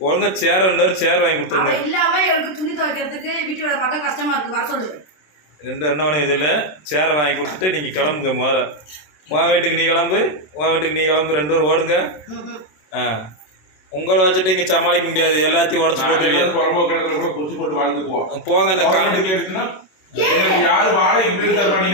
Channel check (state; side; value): late; right; 27 ms